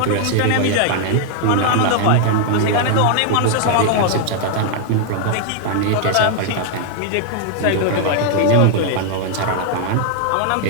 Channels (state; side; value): different; both; correlation 0.00